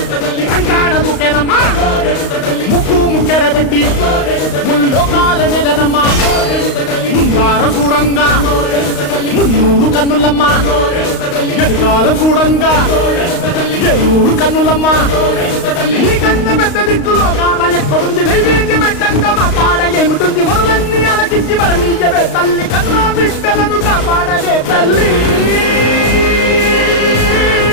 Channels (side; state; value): right; late; 35 ms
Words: కంకాణ దూకేనమ్మా ముక్కు ముక్కెరబెట్టి ముల్లోకాల నెలనమ్మా ముంగార చూడంగా మున్నూరు కన్నులమ్మా ఎనకాల చూడంగా ఏనూరు కన్నులమ్మా నీ కన్న పెద్ద దిక్కులో కాల ఎక్కడుంది నైవేద్యం పెట్టంగా మా కాడ ఏమిటుంది మనలన్నీ అలకించి మరణీయవే తల్లి కన్నా బిడ్డలను కాపాడవే తల్లి